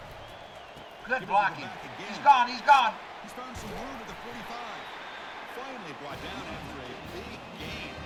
Good blocking. He's gone. He's gone. He's found some room at the 45. Finally brought down after a big gain.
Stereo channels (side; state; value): both; identical; correlation 1.00